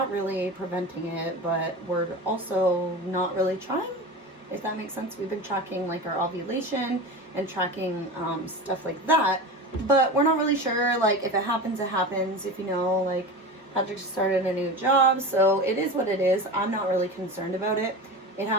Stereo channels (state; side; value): normal; both; correlation 0.28